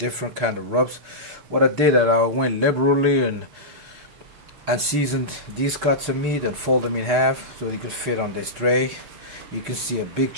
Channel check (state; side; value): late; left; 6.8 ms